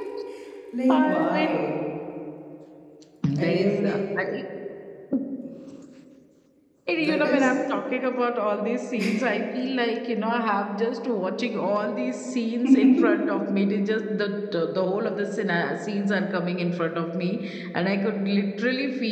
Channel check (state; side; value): identical; both; correlation 1.00